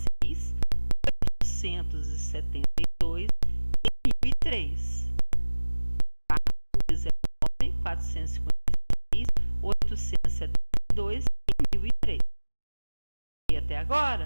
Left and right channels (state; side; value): inverted; both; correlation -1.00